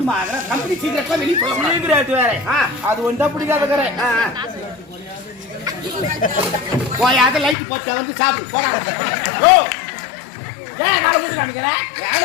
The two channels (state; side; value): drops out; right; at 7.6 s